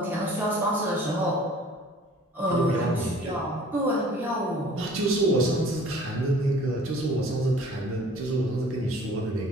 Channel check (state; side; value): normal; both; correlation 0.50